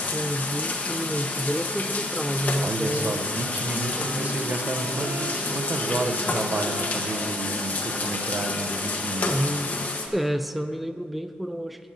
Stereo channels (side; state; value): both; normal; correlation 0.60